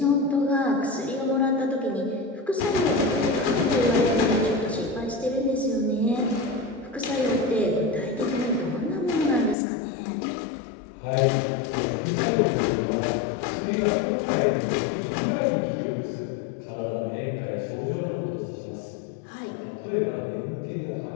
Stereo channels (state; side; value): drops out; right; at 9.6 s